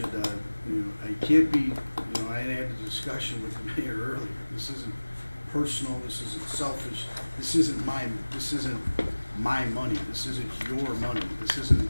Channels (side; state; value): both; inverted; correlation -1.00